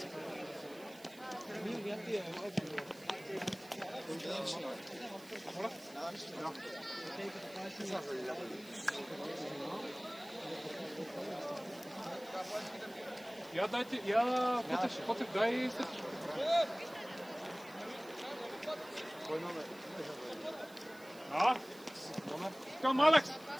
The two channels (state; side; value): noise; right; hiss, 22 dB below the sound